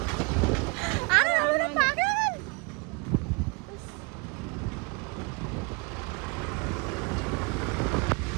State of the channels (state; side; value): quieter; left; 30.5 dB